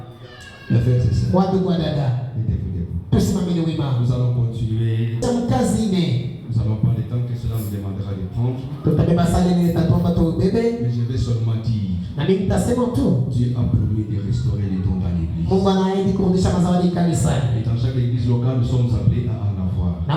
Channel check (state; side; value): identical; both; correlation 1.00